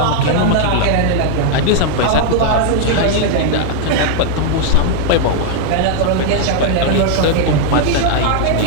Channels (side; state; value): both; different; correlation 0.00